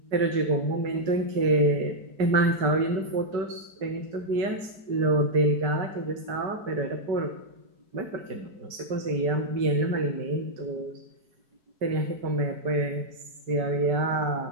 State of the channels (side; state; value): left; late; 4.7 ms